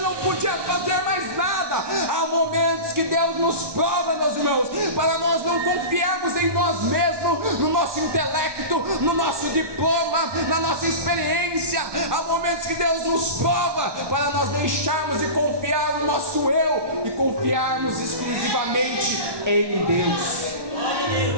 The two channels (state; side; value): late; left; 1.2 ms